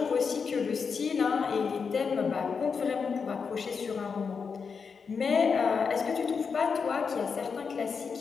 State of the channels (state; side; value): quieter; right; 5.6 dB